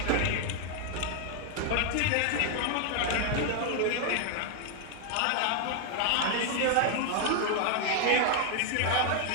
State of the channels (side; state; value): both; different; correlation 0.00